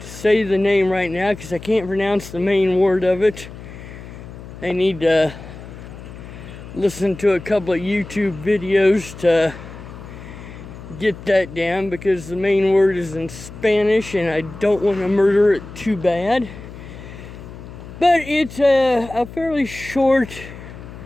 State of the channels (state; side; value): noise; left; hum, 14 dB below the sound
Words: say the name right now because I can't pronounce the main word of it. I need to listen to a couple of YouTube videos to get that down because the main word is in Spanish and I don't want to murder it too bad. But it's a fairly short